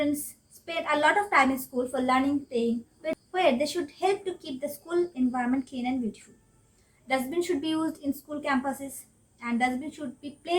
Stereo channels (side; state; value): both; identical; correlation 1.00